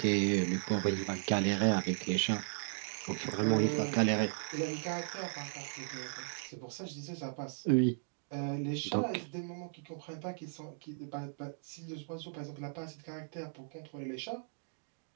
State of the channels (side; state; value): left; silent; digital silence